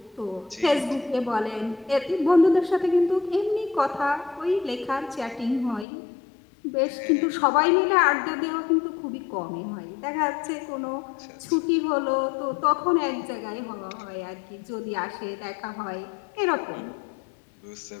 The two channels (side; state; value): right; drops out; at 5.9 s